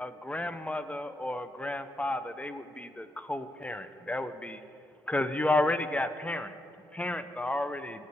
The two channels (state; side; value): normal; both; correlation 0.82